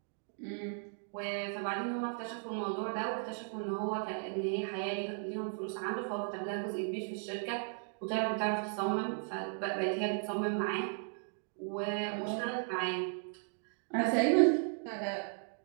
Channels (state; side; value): silent; left; 54 dB below the other